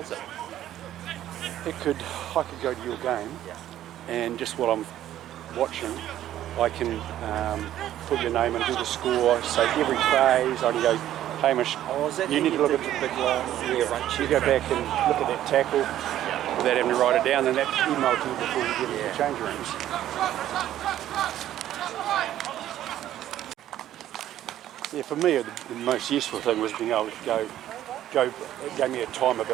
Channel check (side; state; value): left; quieter; 12.4 dB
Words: is it? I could go to your game, and just while I'm watching, I can put your name and do the score. So every phase, I can go, Hamish, you need to look at the big long rearrange. You go back and look at that tackle without having to write it down, and that's emailed to you before you get into the change rooms. Yeah, for me, the most useful thing was being able to go. It gave me a time